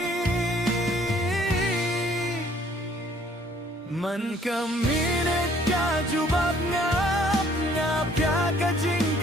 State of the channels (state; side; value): normal; both; correlation 0.60